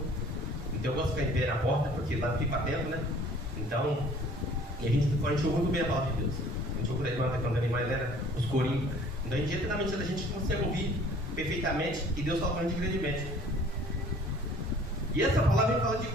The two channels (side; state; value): both; normal; correlation 0.52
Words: Então eu gosto de ficar em pé na porta, porque lá fica para dentro, né? Então, e a gente ouve muito bem a palavra de Deus. A gente ouve a irmã quando ela mais era os corinhos. Então, diretamente a gente consegue ouvir perfeitamente e Deus fala para a gente grandemente. E essa palavra fala de